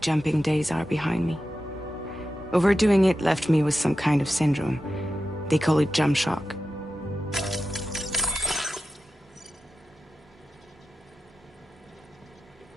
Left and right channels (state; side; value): normal; both; correlation 0.92